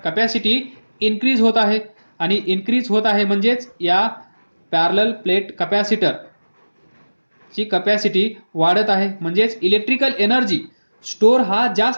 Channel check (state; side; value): inverted; both; correlation -1.00